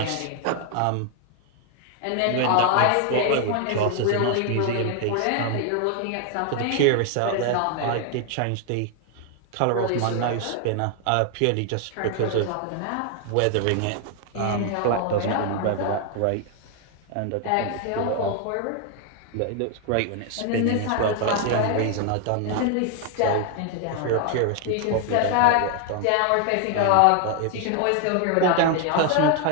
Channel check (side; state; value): both; different; correlation 0.00